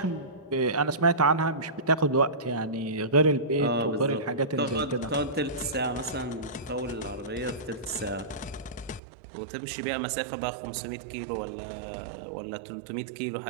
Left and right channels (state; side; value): drops out; left; at 9.0 s